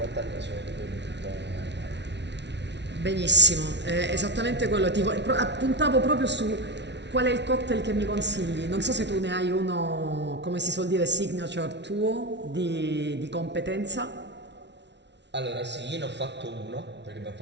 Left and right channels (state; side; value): late; left; 0.50 ms